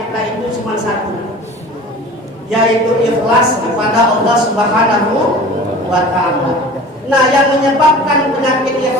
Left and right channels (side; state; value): both; normal; correlation 0.40